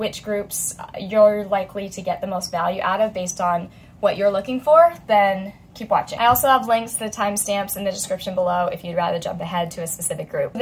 groups you're likely to get the most value out of based on what you're looking for, then keep watching. I also have links to the timestamps in the description below if you'd rather jump ahead to a specific group.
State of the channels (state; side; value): identical; both; correlation 1.00